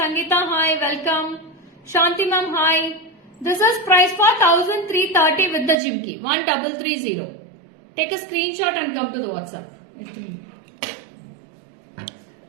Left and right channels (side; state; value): left; drops out; at 5.8 s